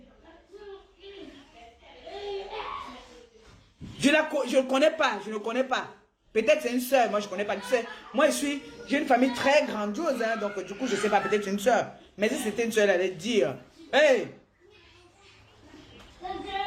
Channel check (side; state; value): both; identical; correlation 1.00